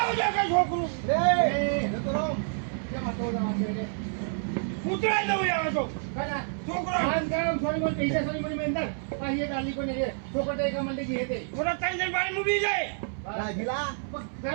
છોકરું રે તો રમ કેમ તો રમો છે ઉતરાઈ દઉં યાર તો કના છોકરો આન કામ સોરી બોલ પૈસા સોરી બોલ મેંદર પાહિએ ડાલી કોને રે છોકરો તે કમંડે જી હેતે મોટા ત્રણ જણ બારી મૂકી જાય રાજીલા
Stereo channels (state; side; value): silent; left; 59 dB below the other